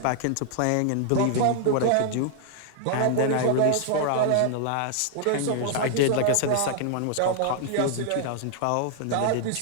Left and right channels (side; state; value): both; different; correlation -0.01